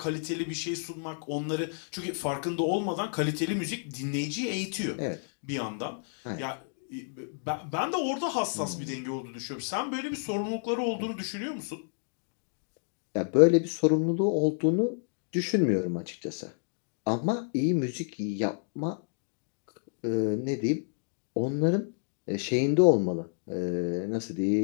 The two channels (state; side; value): silent; right; digital silence